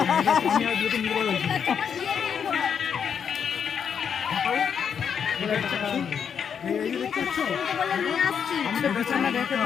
আমি আর বিয়েতে নির্ভর হয়েছি। এই যে দেখতে পাচ্ছ? আমি তো বেছে না দেখে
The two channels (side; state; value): right; quieter; 7.4 dB